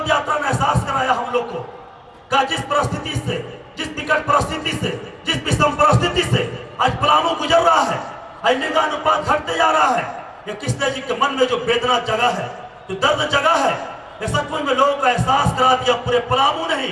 यात्रा ने एहसास कराया हम लोग को का जिस परिस्थिति से, जिस विकट परिस्थिति से, जिस विषम परिस्थिति से आज पलामू गुजर रहा है, आज लिंगानुपात घटते जा रहा है, ये कृष्ण जी के मन में जो वेदना जगह है, जो दर्द जगह है, ये सचमुच में लोगों का एहसास करा दिया। पूरे पलामू नहीं,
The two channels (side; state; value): both; identical; correlation 1.00